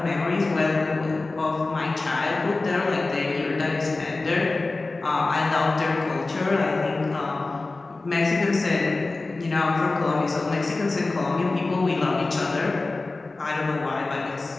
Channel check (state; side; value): quieter; right; 3.4 dB